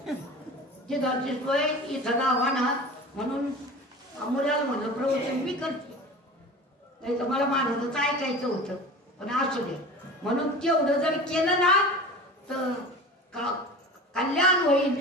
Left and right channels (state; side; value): normal; both; correlation 0.36